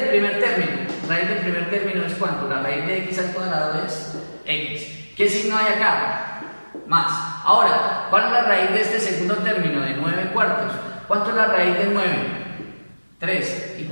primer término. Raíz del primer término es ¿cuánto? La raíz de x al cuadrado es x. ¿Qué signo hay acá? Más. Ahora, ¿cuál es la raíz de este segundo término de 9/4? ¿Cuánto es la raíz de 9? 3. ¿Y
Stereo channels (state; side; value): inverted; both; correlation -1.00